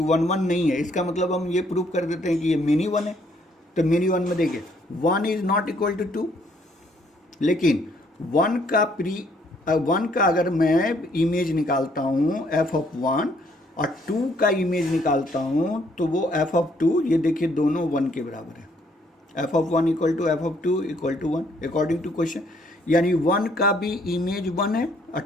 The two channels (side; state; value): both; normal; correlation 0.67